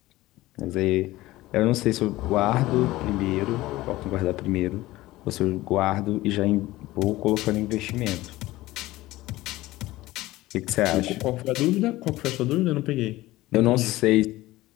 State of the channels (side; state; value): right; quieter; 17.8 dB